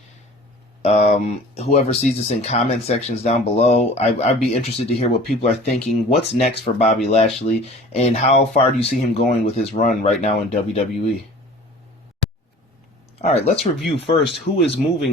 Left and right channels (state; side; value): normal; both; correlation 0.45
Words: Whoever sees this in comment sections down below, I'd be interested to hear what people are thinking. What's next for Bobby Lashley, and how far do you see him going with his run right now in WWE? Alright, let's review first who is